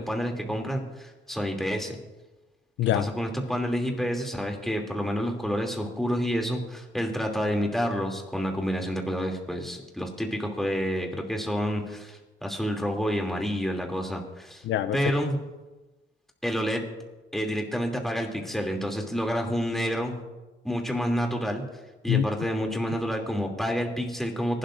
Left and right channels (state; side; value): normal; both; correlation 0.79